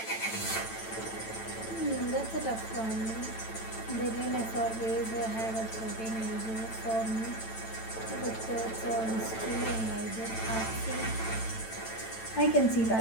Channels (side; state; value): right; late; 9.0 ms